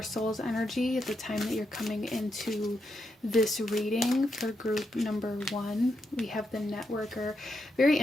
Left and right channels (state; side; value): normal; both; correlation 0.82